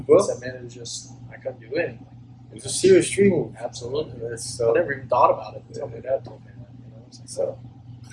bro. I said, man, it was just I couldn't do anything. It's a serious street move. Absolutely. It's, I never even thought about it until my dad told me that. You know, it's like, So,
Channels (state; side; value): identical; both; correlation 1.00